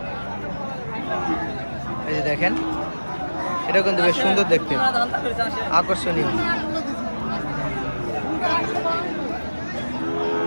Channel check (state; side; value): inverted; both; correlation -1.00